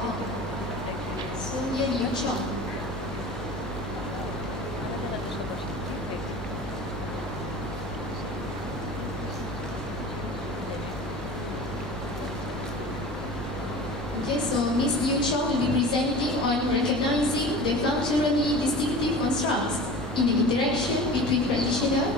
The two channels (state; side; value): normal; both; correlation 0.37